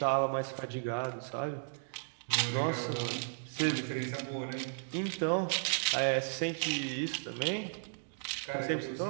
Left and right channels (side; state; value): left; silent; digital silence